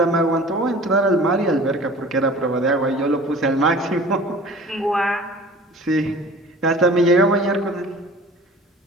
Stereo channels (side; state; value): both; normal; correlation 0.44